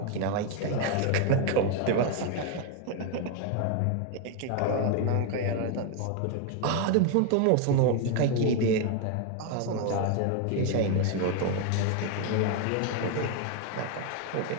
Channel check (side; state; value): both; different; correlation 0.01